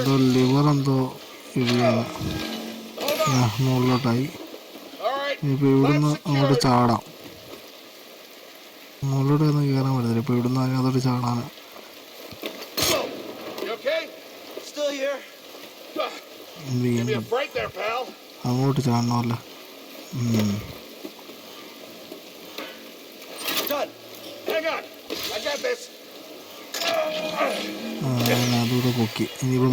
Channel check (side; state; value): both; identical; correlation 1.00